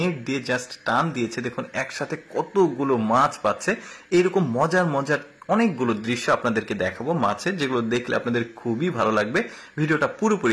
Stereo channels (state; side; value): identical; both; correlation 1.00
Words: দিয়ে জাস্ট টান দিয়েছে। দেখুন একসাথে কতগুলো মাছ পাচ্ছে। এইরকম মজার মজার অনেকগুলো দৃশ্য আপনাদেরকে দেখাবো মাছের, যেগুলো দেখলে আপনাদের খুবই ভালো লাগবে। ভিডিওটা